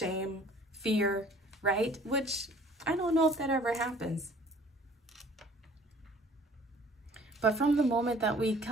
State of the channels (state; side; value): normal; both; correlation 0.54